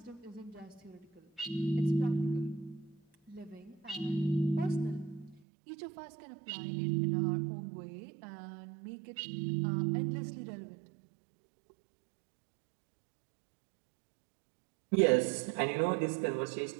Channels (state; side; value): drops out; left; at 5.4 s